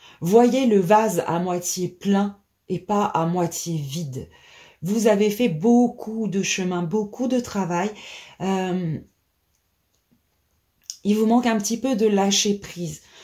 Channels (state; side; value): identical; both; correlation 1.00